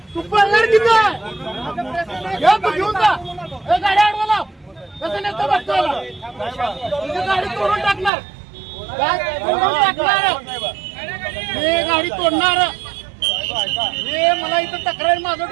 तू? पडणार किती तू घेऊन जा. गाडी आडवा लाव. कसं नेतो बघतो तुझी गाडी तोडून टाकणार. मी गाडी तोडणार. मला इथं तक्रार माझं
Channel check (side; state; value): left; drops out; at 8.1 s